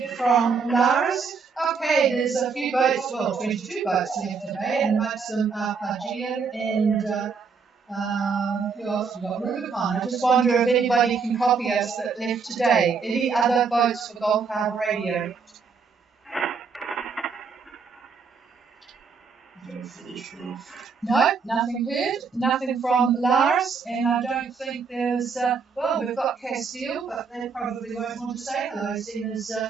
from Laris. Okay, there's a few boats, 22 boats left today, and amongst them are Pagia and who else we got? Rubicon. I just wonder if anybody can copy us that left today. Any other votes for Gulf Harbour Radio? No, nothing heard. Nothing from Lars, and I don't think there's. We've got Castile, but they probably won't want to say hello, seeing as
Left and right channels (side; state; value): left; quieter; 5.4 dB